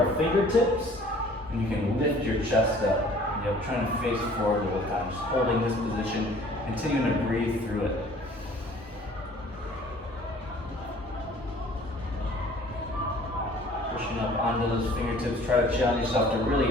fingertips, and you can lift your chest up. Yep, trying to face forward the whole time, just holding this position, continuing to breathe through it. Pushing up onto those fingertips, try to challenge yourself to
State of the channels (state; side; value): normal; both; correlation 0.52